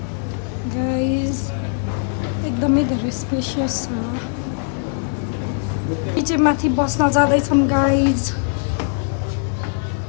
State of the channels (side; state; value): right; silent; 65 dB below the other